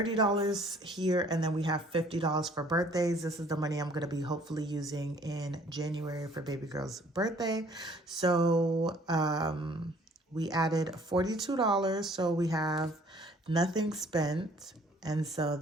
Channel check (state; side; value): normal; both; correlation 0.57